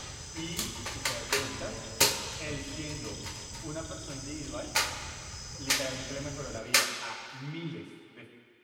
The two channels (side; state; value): both; identical; correlation 1.00